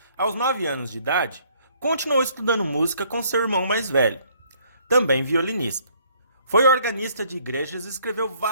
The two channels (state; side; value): inverted; both; correlation -0.63